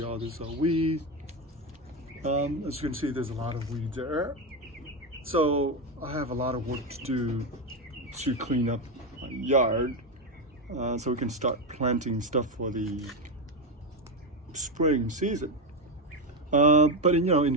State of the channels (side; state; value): both; normal; correlation 0.10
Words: all these are weeds. As you can see, there's a lot of weeds there. So I have a lot of work to do to clean up my yard, so we can start planting stuff for the spring season. But in